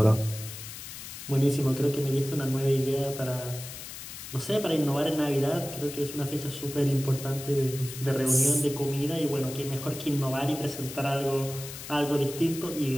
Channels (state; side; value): noise; left; hiss, 11 dB below the sound